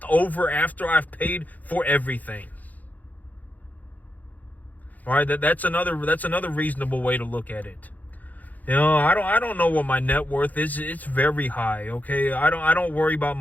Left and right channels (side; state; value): right; late; 0.080 ms